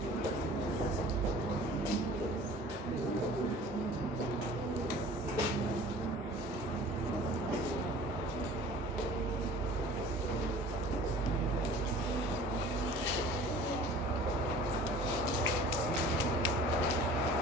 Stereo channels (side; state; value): both; normal; correlation 0.46